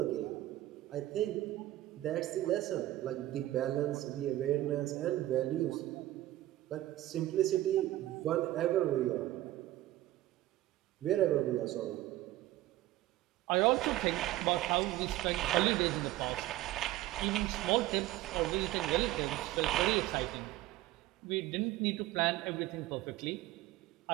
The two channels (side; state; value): left; quieter; 15.5 dB